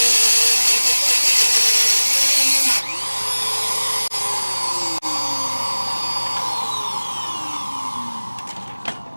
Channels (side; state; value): both; inverted; correlation -1.00